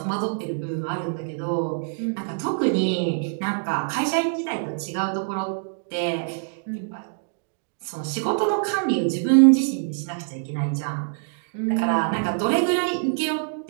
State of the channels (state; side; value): silent; left; digital silence